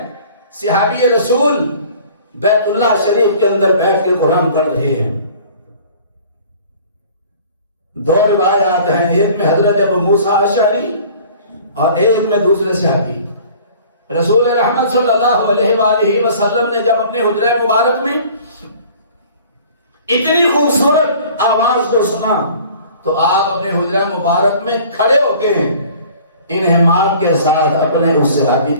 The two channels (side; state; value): both; inverted; correlation -0.49